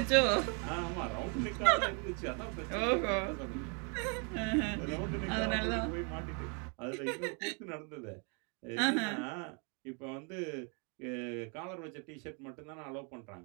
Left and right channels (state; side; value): quieter; left; 36.8 dB